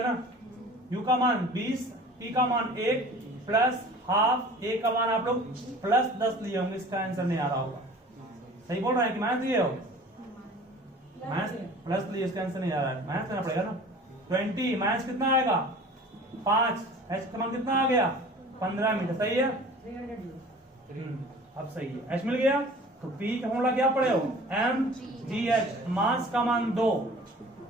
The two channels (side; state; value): both; normal; correlation 0.44